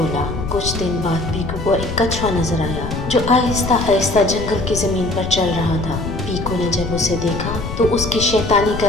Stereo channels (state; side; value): noise; left; rumble, 7 dB below the sound